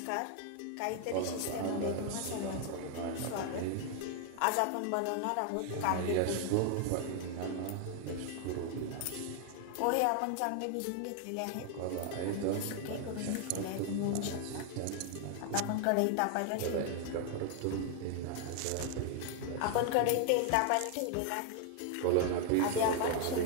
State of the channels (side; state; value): both; different; correlation 0.00